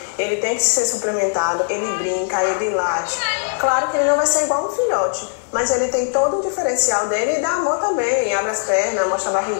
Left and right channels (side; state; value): right; silent; digital silence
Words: ele tem que ser suplementado, ele brinca, ele late. Claro que ele não vai ser igual um filhote, mas ele tem todo o diferencial dele e dá amor também. Abre as pernas, mostra a